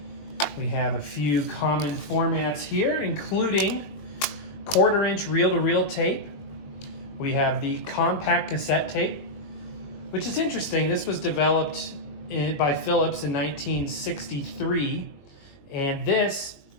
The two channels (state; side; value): late; right; 21 ms